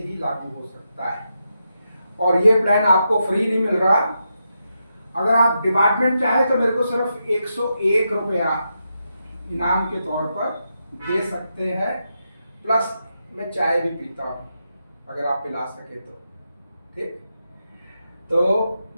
लागू हो सकता है। और ये प्लान आपको फ्री नहीं मिल रहा। अगर आप डिपार्टमेंट चाहे तो मेरे को सिर्फ 101 रुपया इनाम के तौर पर दे सकते हैं, प्लस मैं चाय भी पीता हूँ अगर आप पिला सके तो, ठीक। तो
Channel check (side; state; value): both; inverted; correlation -0.85